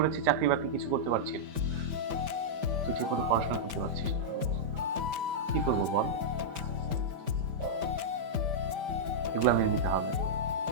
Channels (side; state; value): left; late; 5.1 ms